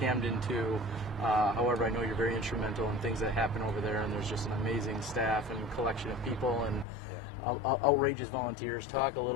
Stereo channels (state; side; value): drops out; right; at 6.9 s